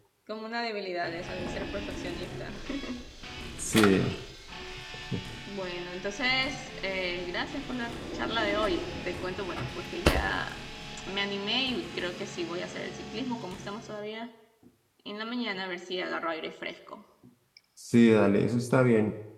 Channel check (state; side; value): identical; both; correlation 1.00